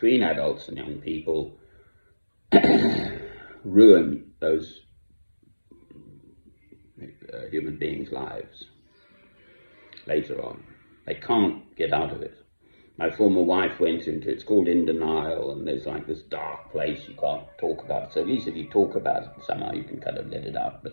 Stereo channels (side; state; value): both; inverted; correlation -1.00